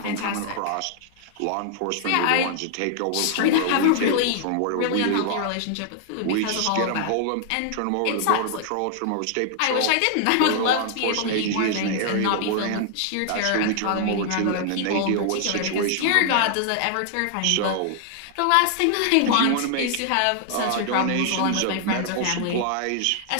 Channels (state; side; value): different; both; correlation -0.01